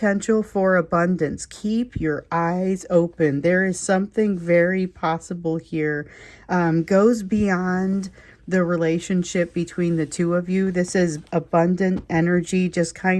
for abundance. Keep your eyes open. There is something very possible here. Goes beyond the relationship between the two of you. This is abundant energy, just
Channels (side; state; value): both; identical; correlation 1.00